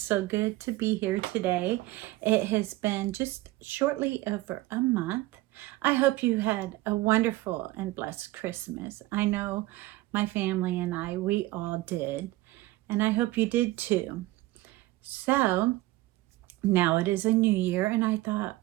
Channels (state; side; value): quieter; left; 18.5 dB